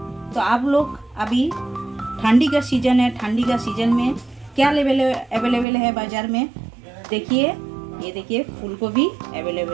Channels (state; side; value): drops out; left; at 5.7 s